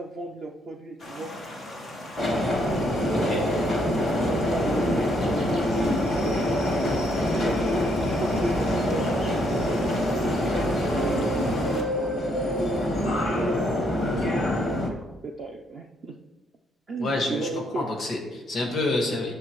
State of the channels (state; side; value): normal; both; correlation 0.71